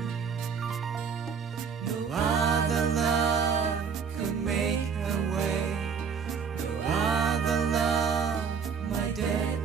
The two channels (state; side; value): quieter; left; 6.3 dB